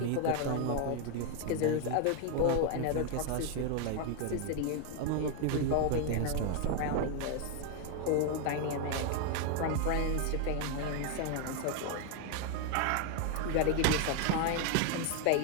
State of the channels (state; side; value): different; both; correlation 0.01